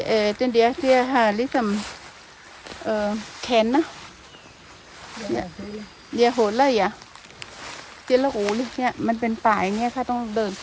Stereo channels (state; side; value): identical; both; correlation 1.00